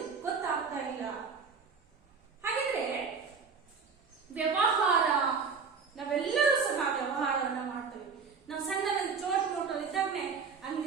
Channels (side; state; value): left; quieter; 5.5 dB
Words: ಗೊತ್ತಾಗ್ತಾ ಇಲ್ಲ. ಹಾಗಿದ್ರೆ ವ್ಯವಹಾರ, ನಾವೆಲ್ಲರೂ ಸಹ ವ್ಯವಹಾರವನ್ನ ಮಾಡ್ತೇವೆ. ನಾವು ಸಣ್ಣದಲ್ಲಿ ಚೋಟ್ ಮೋಟರ್ ಇದ್ದಾಗನೆ